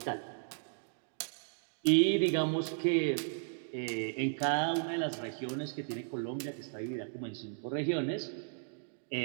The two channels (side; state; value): left; silent; digital silence